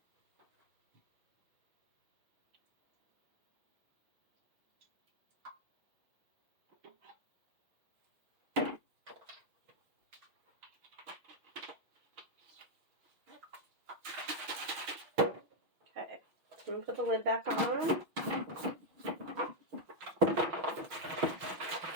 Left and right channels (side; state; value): left; late; 6.0 ms